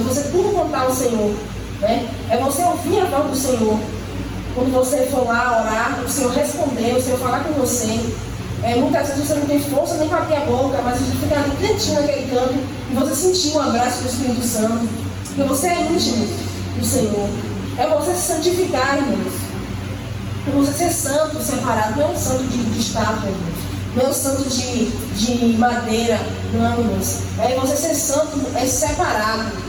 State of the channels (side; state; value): both; identical; correlation 1.00